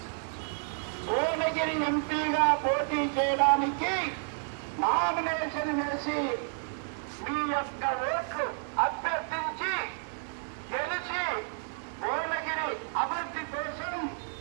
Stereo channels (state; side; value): silent; left; 56 dB below the other